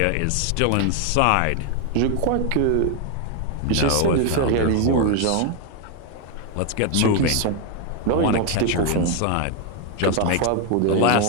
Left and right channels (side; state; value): both; different; correlation 0.01